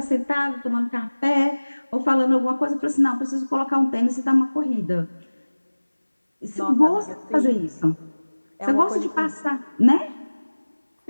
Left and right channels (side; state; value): both; inverted; correlation -1.00